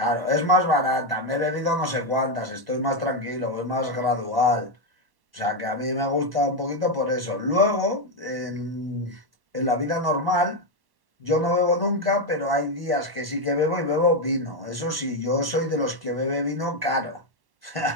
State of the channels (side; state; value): left; late; 1.1 ms